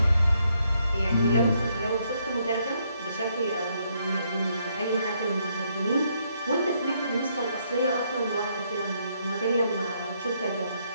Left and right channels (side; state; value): both; inverted; correlation -0.73